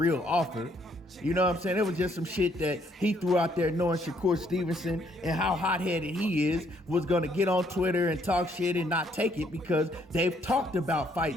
offer. You know what I'm saying? It was just some shit that he threw out there knowing Shakur Stevenson and how hot-headed he is was going to get on Twitter and talk shit and not take it because they've talked about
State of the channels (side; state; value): both; normal; correlation 0.68